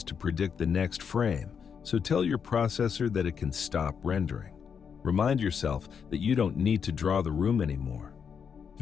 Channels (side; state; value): right; quieter; 6.8 dB